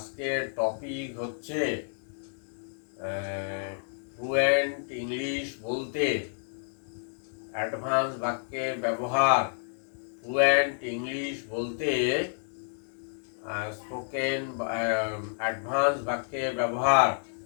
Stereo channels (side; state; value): right; silent; digital silence